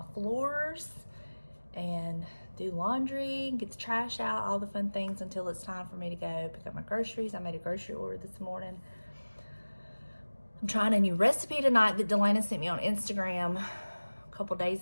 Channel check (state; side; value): inverted; both; correlation -1.00